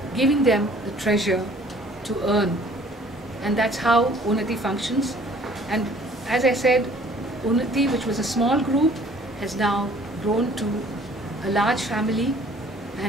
giving them the treasure to earn. And that's how Unnati functions. And as I said, Unnati, which was a small group, has now grown to a large family,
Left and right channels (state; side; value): normal; both; correlation 0.55